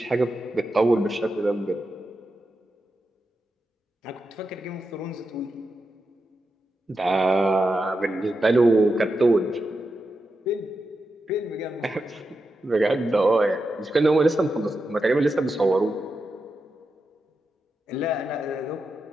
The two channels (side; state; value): both; normal; correlation 0.88